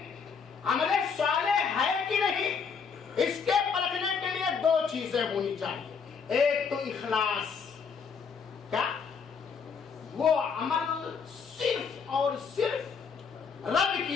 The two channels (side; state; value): right; quieter; 5.9 dB